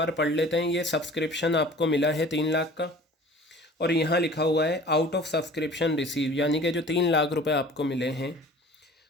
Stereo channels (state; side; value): normal; both; correlation 0.45